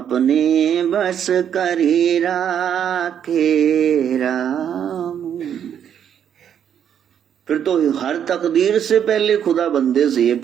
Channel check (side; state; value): left; quieter; 8.9 dB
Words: बस करी राखे राम। फिर तो हर तकदीर से पहले खुदा बंदे से ये